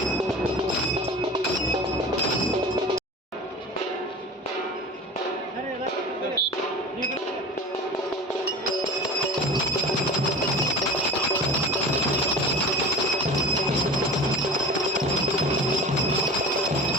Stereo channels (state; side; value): normal; both; correlation 0.37